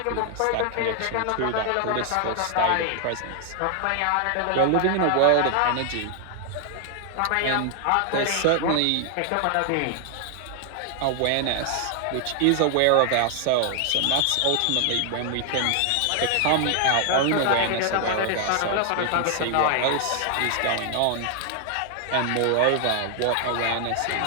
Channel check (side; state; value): both; different; correlation 0.00